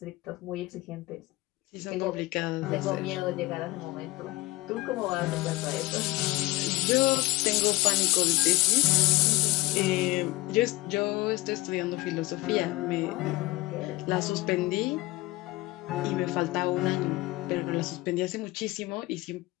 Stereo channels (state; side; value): quieter; right; 20.8 dB